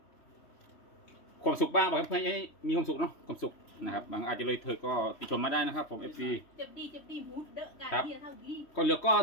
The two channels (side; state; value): right; late; 3.1 ms